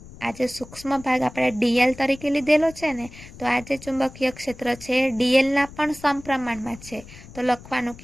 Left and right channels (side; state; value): left; noise; rumble, 18 dB below the sound